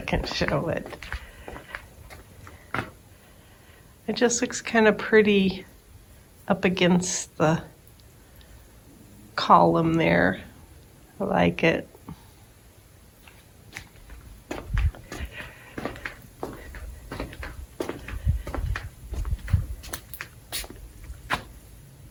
show it. It just looks kind of pretty up against the column there. I like it.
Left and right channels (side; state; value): both; identical; correlation 1.00